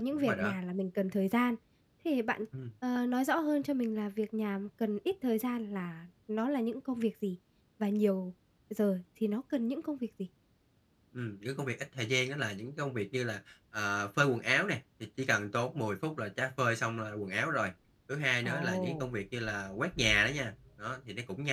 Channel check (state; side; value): identical; both; correlation 1.00